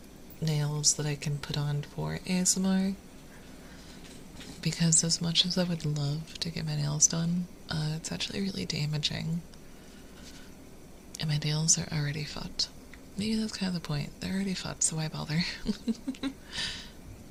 nails that I can put on for ASMR. Because as much as I would love to get my nails done, it's actually really damaging. And my nails are already fucked. Maybe that's kind of the point. They're already fucked, so why bother?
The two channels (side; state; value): both; identical; correlation 1.00